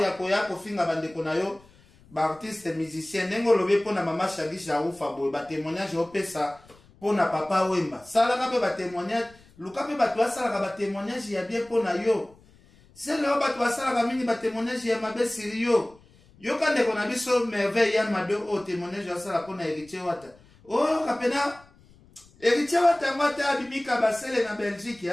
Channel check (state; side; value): noise; left; rumble, 27 dB below the sound